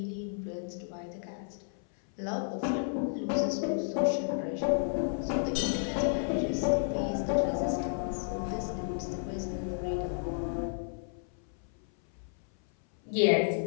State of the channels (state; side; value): silent; right; 56 dB below the other